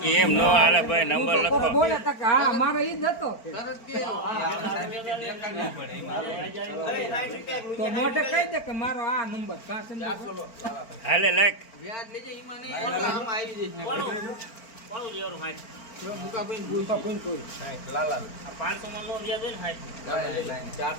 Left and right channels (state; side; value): late; right; 4.4 ms